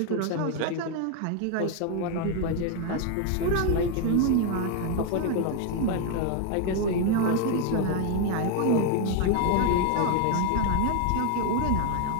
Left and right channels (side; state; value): both; different; correlation 0.01